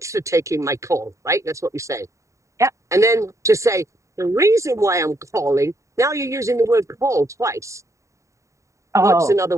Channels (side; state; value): left; late; 0.15 ms